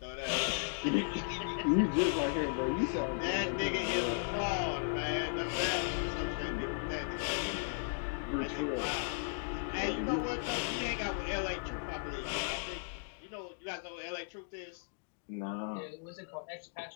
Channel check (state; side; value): silent; right; digital silence